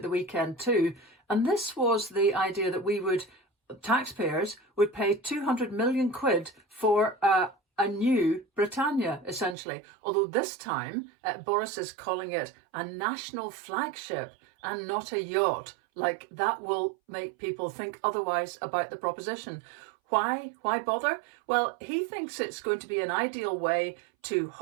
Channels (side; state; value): left; drops out; at 9.6 s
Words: the weekend too. And this was the idea that taxpayers would pay 200 million quid for a new Britannia, essentially. Although this time, Boris is calling it a national flagship and not a yacht. Like, that will make people think otherwise about the proposition. Why bother? Well, he thinks it's going to be an ideal way to